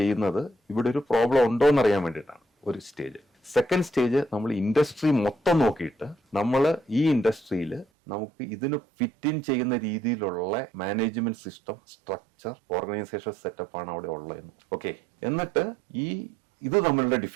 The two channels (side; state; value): left; drops out; at 7.9 s